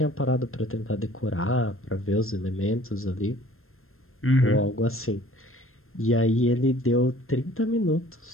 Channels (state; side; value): late; right; 0.61 ms